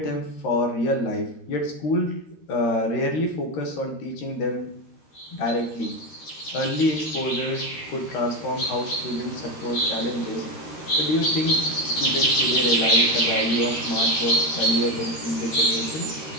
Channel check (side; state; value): right; late; 13 ms